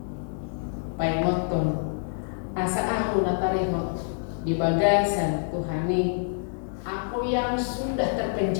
paimoton asa aku natarihot di bagasan Tuhani, aku yang sudah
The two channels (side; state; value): right; silent; digital silence